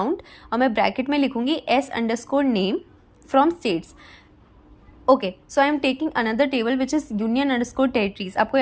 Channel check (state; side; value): identical; both; correlation 1.00